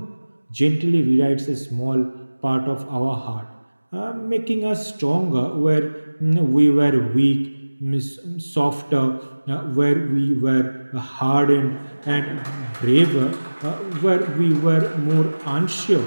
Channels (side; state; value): both; inverted; correlation -1.00